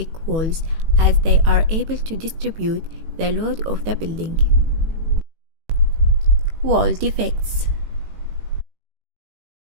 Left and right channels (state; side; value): late; left; 18 ms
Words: walls as they are able to distribute the load of the building. Wall defects: